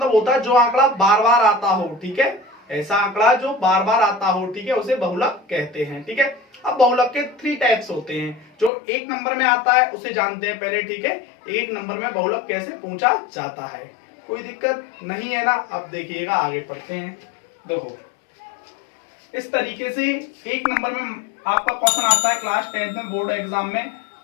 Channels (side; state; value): right; drops out; at 8.7 s